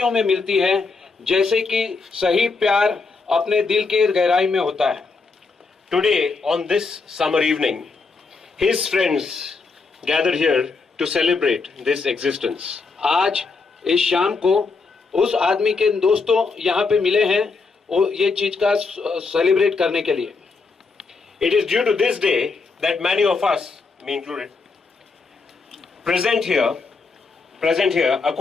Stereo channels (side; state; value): right; quieter; 4.3 dB